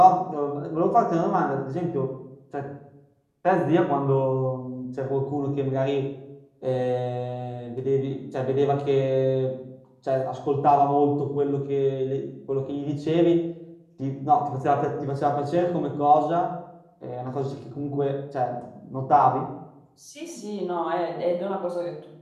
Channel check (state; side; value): identical; both; correlation 1.00